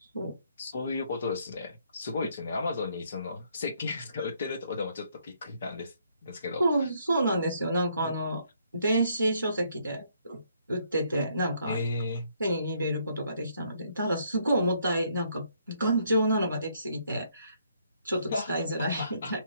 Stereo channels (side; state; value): both; inverted; correlation -0.69